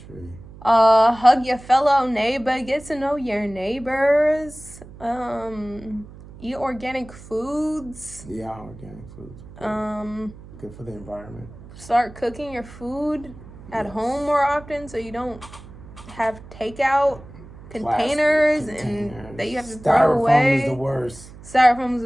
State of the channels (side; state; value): right; noise; hum, 18 dB below the sound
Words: Hug your fellow neighbor. Get to know your neighbors. Eat organic foods. Yeah, organic foods. Good for the environment. Start cooking your food at home more often, so you don't have takeout containers and that you have to throw away. Styrofoam is the worst. Styrofoam is